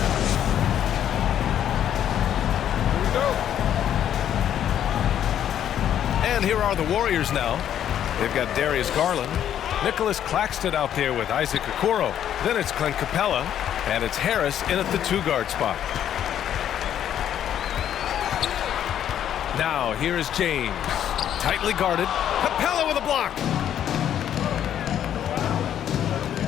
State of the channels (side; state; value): right; quieter; 10.2 dB